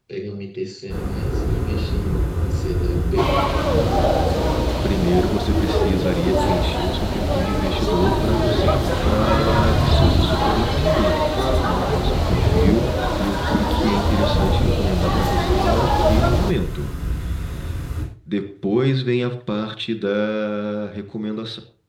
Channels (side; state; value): both; identical; correlation 1.00